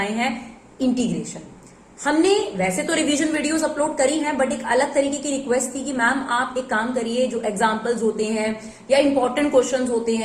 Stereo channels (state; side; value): identical; both; correlation 1.00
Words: हैं, इंटीग्रेशन। हमने वैसे तो रिवीजन वीडियोस अपलोड करी हैं, बट एक अलग तरीके की रिक्वेस्ट थी कि मैम आप एक काम करिए, जो एग्जांपल्स होते हैं या इंपॉर्टेंट क्वेश्चंस होते